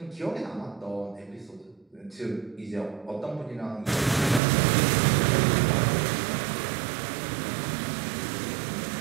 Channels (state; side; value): drops out; left; at 4.4 s